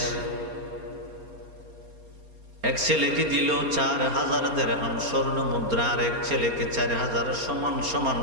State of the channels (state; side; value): late; left; 4.3 ms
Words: এক ছেলেকে দিল ৪,০০০ দিরহাম স্বর্ণ মুদ্রা, আর এক ছেলেকে ৪,০০০ সমান সমান